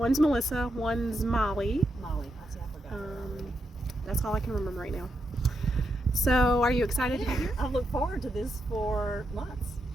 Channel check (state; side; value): normal; both; correlation 0.83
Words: Melissa, one's Molly. Molly, I forgot. That's all I can remember right now. So, are you excited to be here? I've looked forward to this for months.